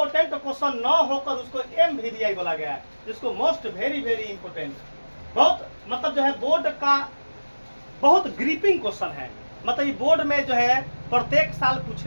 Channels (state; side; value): inverted; both; correlation -1.00